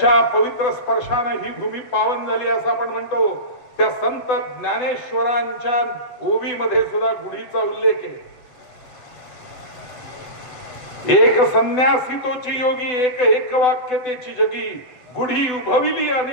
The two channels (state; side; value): late; right; 8.0 ms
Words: पवित्र स्पर्शाने ही भूमी पावन झाली असं आपण म्हणतो, त्या संत ज्ञानेश्वरांच्या ओवीमध्ये सुद्धा गुढीचा उल्लेख आहे. एक संन्यासी तोची योगी, एक एक वाक्यतेची जगी, गुढी उभविली